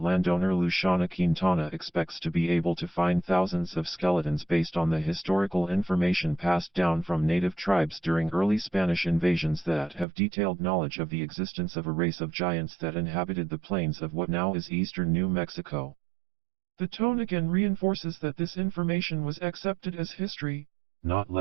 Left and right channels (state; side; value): drops out; left; at 10.1 s